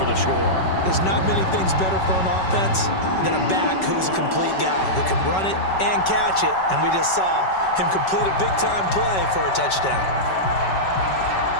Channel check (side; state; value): right; late; 5.3 ms